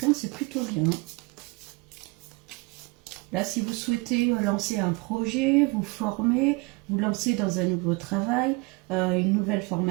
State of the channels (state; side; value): quieter; left; 27.1 dB